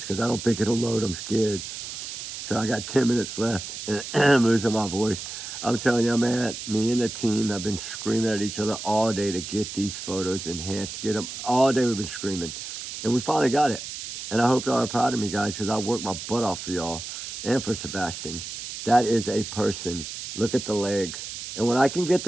because I don't think it'll load. I'm scared. So I got 10 minutes left, and I'm losing my voice. I'm telling you, man, me and the team have been screaming at each other all day to get these photos enhanced, get them. All day we've been screaming, and we finally got it. And I hope y'all are proud of me, guys, because I worked my butt off for y'all and for Sebastian. That is a person. Look at the legs. And when I can get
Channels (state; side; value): noise; right; hiss, 8 dB below the sound